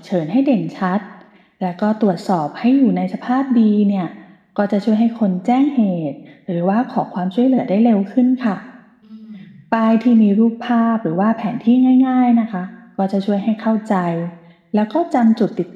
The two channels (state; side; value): identical; both; correlation 1.00